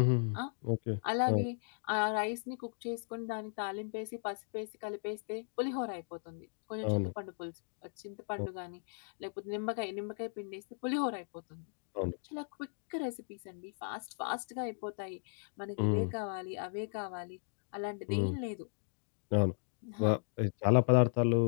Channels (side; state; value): right; silent; digital silence